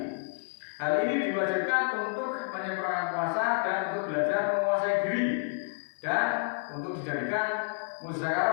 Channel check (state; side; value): silent; right; 58 dB below the other